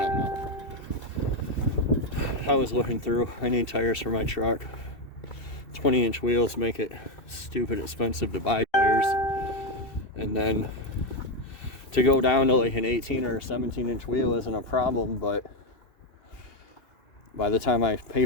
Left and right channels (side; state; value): right; late; 2.7 ms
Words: don't know. I was looking through. I need tires for my truck. 20-inch wheels make it stupid expensive to buy tires, and then to go down to like an 18 or 17-inch wheel isn't a problem, but by the time I pay